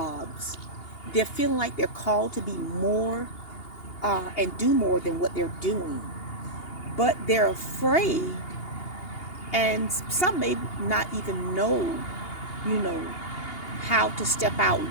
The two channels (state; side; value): late; right; 2.8 ms